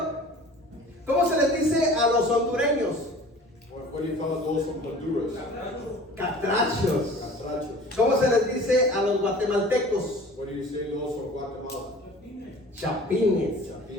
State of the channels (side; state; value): both; normal; correlation 0.45